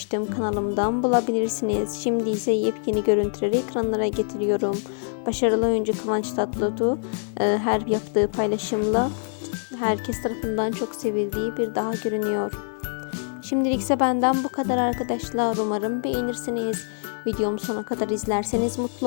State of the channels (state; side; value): silent; right; 59 dB below the other